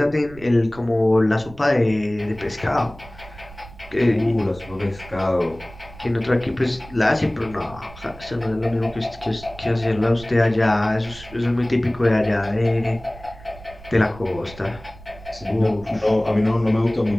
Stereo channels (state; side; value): noise; right; rumble, 19 dB below the sound